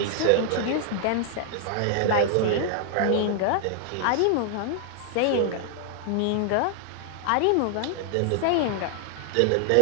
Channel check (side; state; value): both; different; correlation 0.00